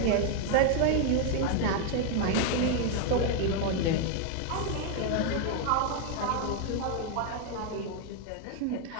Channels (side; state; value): both; different; correlation 0.01